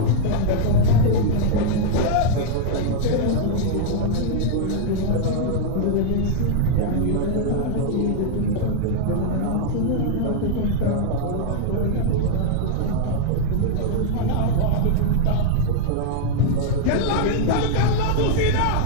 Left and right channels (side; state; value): both; different; correlation -0.01